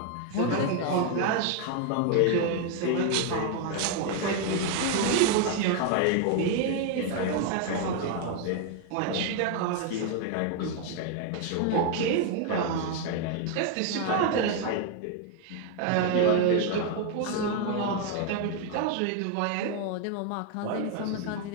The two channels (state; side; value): different; both; correlation 0.00